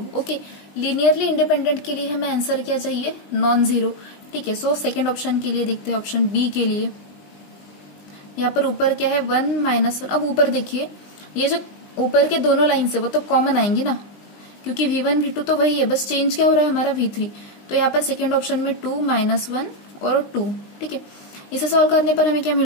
ओके, लीनियरली इंडिपेंडेंट के लिए हमें आंसर क्या चाहिए, नॉन जीरो। ठीक है, सो सेकंड ऑप्शन के लिए देखते हैं, ऑप्शन बी के लिए। यहाँ पर ऊपर क्या है, 1 -1। अब ऊपर देखिए, ये जो ऊपर के दोनों लाइन से वो तो कॉमन आएंगी ना, क्योंकि v1 v2 तो वही है, बस चेंज क्या हो रहा है हमारा, v3। तो यहाँ पर सेकेंड ऑप्शन में 2 -1 और 2। ठीक है, इसे सॉल्व करने पर हमें क्या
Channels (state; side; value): late; right; 20 ms